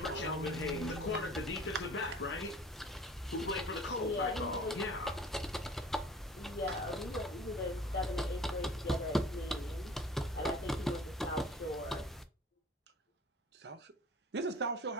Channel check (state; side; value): normal; both; correlation 0.47